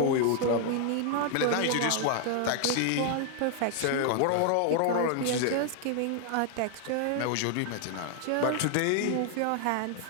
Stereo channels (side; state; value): both; different; correlation 0.00